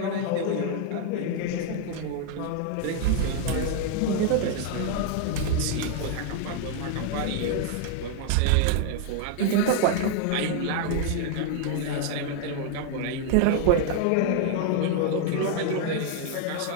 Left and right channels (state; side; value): different; both; correlation 0.00